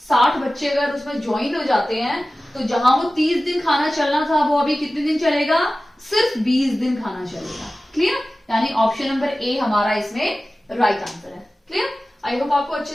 60 बच्चे अगर उसमें ज्वाइन हो जाते हैं तो जहां वो 30 दिन खाना चलना था वो अभी कितने दिन चलेगा, सिर्फ 20 दिन खाना चलेगा। क्लियर। यानी ऑप्शन नंबर ए हमारा इसमें राइट आंसर है। क्लियर। आई होप आपको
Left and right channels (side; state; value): both; normal; correlation 0.96